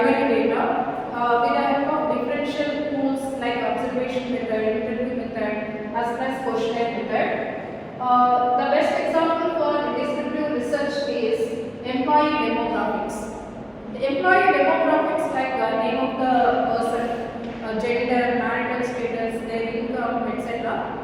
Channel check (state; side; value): identical; both; correlation 1.00